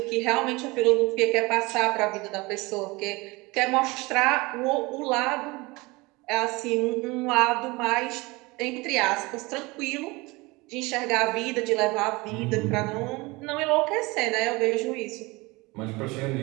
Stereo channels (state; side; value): quieter; left; 23.8 dB